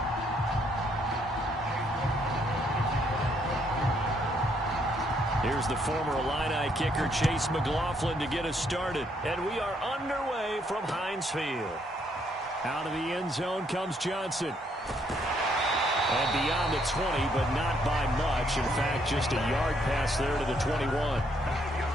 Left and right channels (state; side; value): normal; both; correlation 0.71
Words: Here's the former Illini kicker Chase McLaughlin to get us started. And we are underway from Heinz Field. Out of the end zone comes Johnson. And beyond the 20, but not by much. In fact, just a yard pass there to the 21.